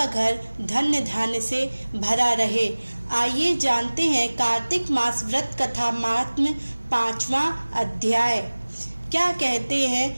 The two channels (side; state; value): both; inverted; correlation -1.00